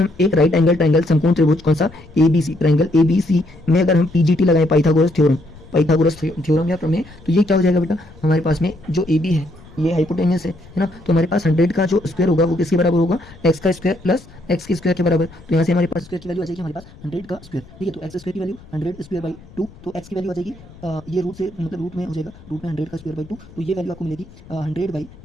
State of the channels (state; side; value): noise; left; rumble, 22 dB below the sound